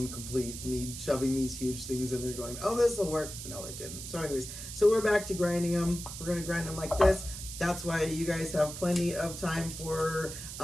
complete me shoving these huge things in there going, oh, this will work. No, it didn't. So anyways, so we're back to grinding them. We're gonna grind them like this. That's why you guys have plenty of time for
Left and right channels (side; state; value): right; noise; hiss, 9 dB below the sound